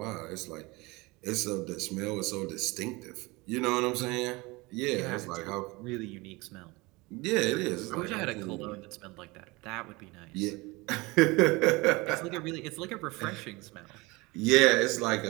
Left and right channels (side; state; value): left; quieter; 23.7 dB